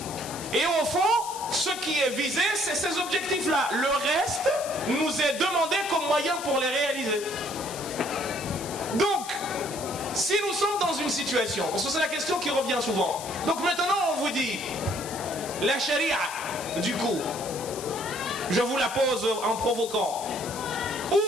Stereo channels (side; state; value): left; noise; hiss, 11 dB below the sound